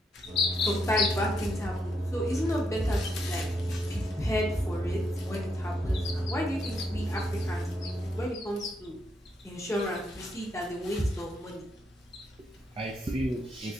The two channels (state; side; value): normal; both; correlation 0.78